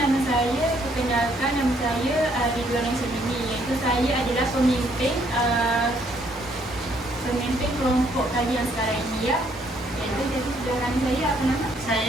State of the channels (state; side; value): normal; both; correlation 0.68